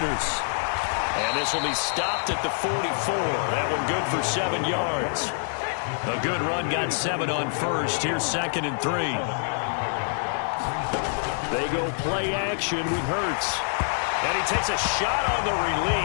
And this will be stopped at the 44. That one good for 7 yards. A good run got 7 on 1st. Here's 2nd and 3. They go play action with Hurts. And he takes a shot on the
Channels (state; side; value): silent; right; digital silence